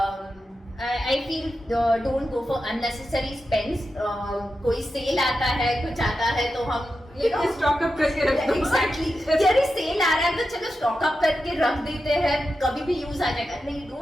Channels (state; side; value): normal; both; correlation 0.90